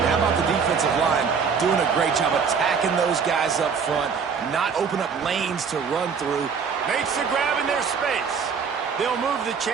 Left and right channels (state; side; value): quieter; left; 6.0 dB